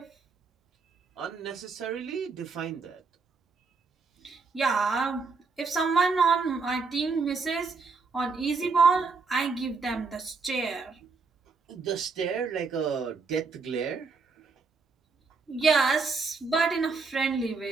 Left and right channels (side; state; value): left; quieter; 4.5 dB